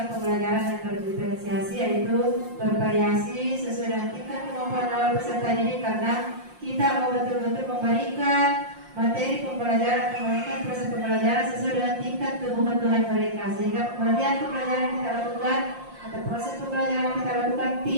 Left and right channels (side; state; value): left; late; 5.7 ms